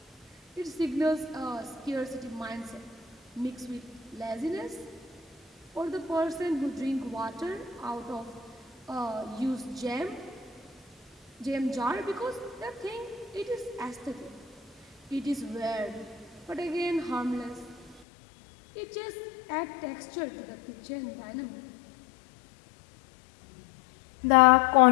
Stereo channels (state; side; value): drops out; right; at 18.1 s